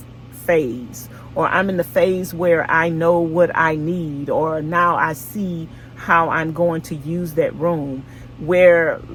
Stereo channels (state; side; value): identical; both; correlation 1.00